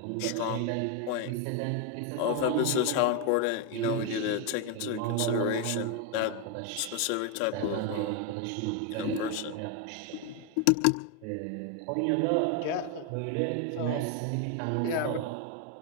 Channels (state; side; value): different; both; correlation 0.01